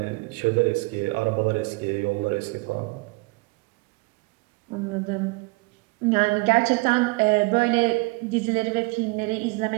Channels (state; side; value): quieter; left; 26.5 dB